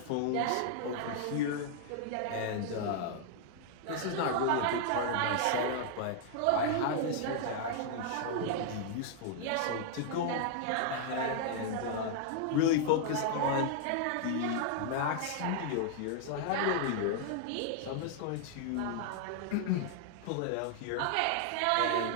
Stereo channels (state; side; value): different; both; correlation 0.00